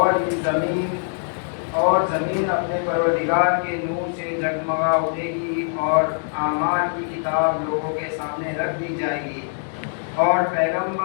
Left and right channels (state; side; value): silent; right; digital silence